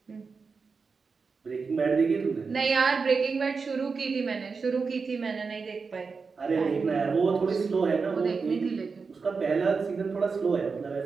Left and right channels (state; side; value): quieter; left; 4.9 dB